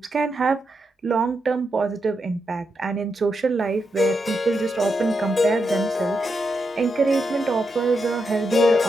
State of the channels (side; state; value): both; normal; correlation 0.84